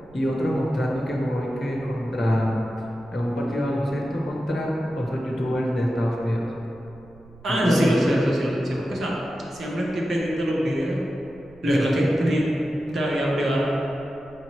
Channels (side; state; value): right; noise; rumble, 24 dB below the sound